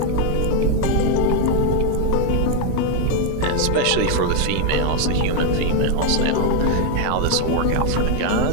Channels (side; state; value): both; different; correlation 0.01